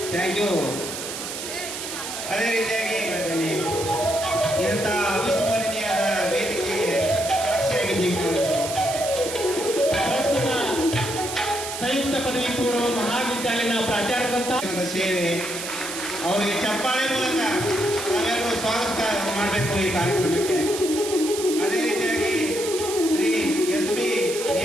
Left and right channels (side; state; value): right; noise; hiss, 7 dB below the sound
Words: ಥ್ಯಾಂಕ್ ಯು. ಅದೇ ರೀತಿಯಾಗಿ ಹೇಳ್ತೇನೆ, ಇಂಥ ಅವಿಸ್ಮರಣೀಯದ ವೇದಿಕೆಗೆ ಸಾಕ್ಷಿಯಾಗಿದ್ದೀವಿ. ಪ್ರಸ್ತುತ ಸಂಯುಕ್ತ ಪದವಿ ಪೂರ್ವ ಮಹಾವಿದ್ಯಾಲಯದ ಪ್ರಾಚಾರ್ಯರಂತ ಸೇವೆ ಅವರಿಗೆ ಚಪ್ಪಾಳೆ ಮೂಲಕ ನಾವೆಲ್ಲರೂ ಸ್ವಾಗತ ಮಾಡಬೇಕು ಈ ಕಾರ್ಯಕ್ರಮಕ್ಕೆ. ಅದೇ ರೀತಿಯಾಗಿ ಶ್ರೀ SP